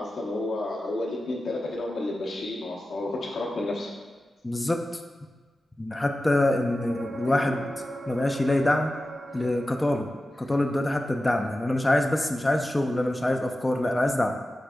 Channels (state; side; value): normal; both; correlation 0.94